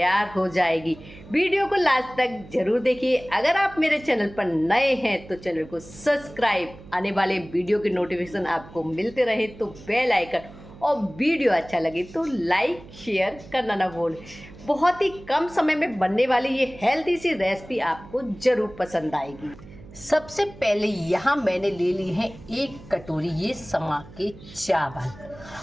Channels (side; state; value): right; noise; hum, 19 dB below the sound